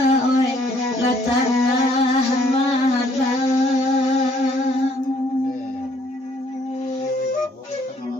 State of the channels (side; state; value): both; normal; correlation 0.64